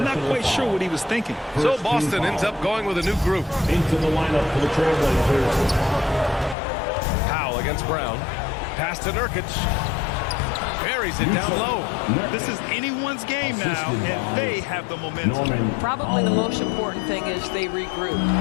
not quite sure what he was thinking. So Boston ends up going with a new group. Into the lineup for the Trailblazers. Powell against Brown. Pass to Nurkic. Buries it down low. This is anyone's game now, and they have the momentum. Probably the most important thing is they regroup.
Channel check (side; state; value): right; drops out; at 6.6 s